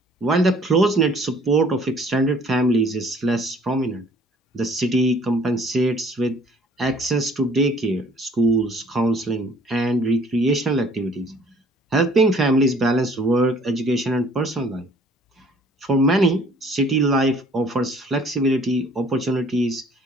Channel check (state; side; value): normal; both; correlation 0.55